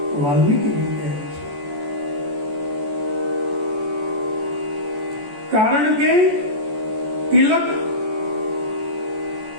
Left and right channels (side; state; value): left; late; 14 ms